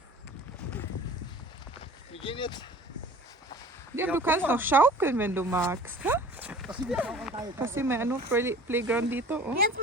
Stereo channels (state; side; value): normal; both; correlation 0.45